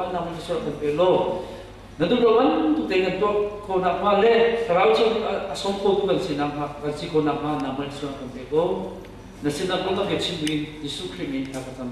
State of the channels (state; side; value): identical; both; correlation 1.00